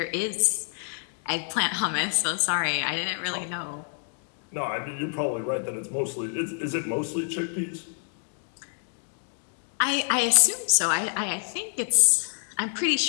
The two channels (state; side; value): silent; right; 60 dB below the other